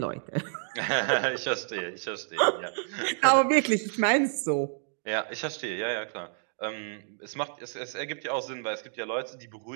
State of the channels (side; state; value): left; silent; digital silence